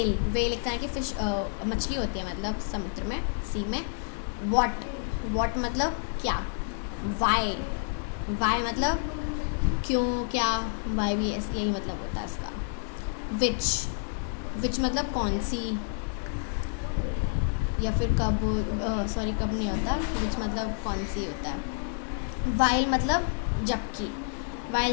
एक तरह की फिश मछली होती है, मतलब समुद्र में, सी में। वॉट मतलब क्या। वाई मतलब क्यों, क्या। वाई भी यही मतलब होता है इसका। विच मतलब कौन सी, या फिर कब, कब नहीं होता, विच मतलब कौन सी होता है। वाइल मतलब जबकि।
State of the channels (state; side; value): silent; right; digital silence